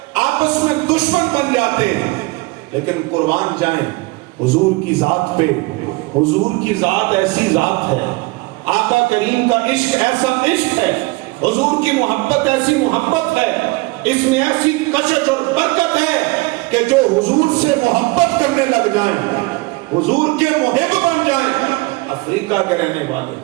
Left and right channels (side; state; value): left; quieter; 23.9 dB